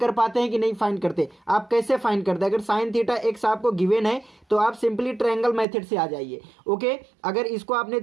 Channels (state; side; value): drops out; left; at 5.7 s